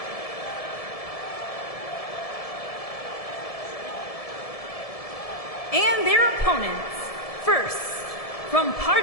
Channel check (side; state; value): right; late; 1.7 ms